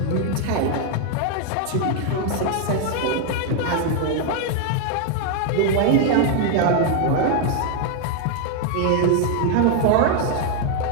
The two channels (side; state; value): both; different; correlation 0.00